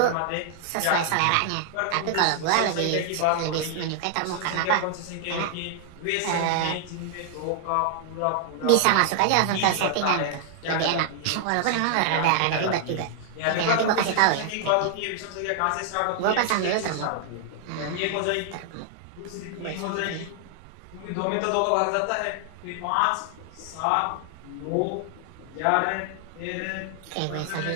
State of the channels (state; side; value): different; both; correlation 0.00